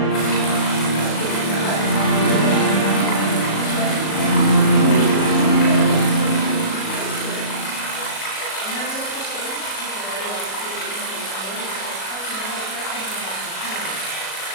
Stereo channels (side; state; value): right; late; 37 ms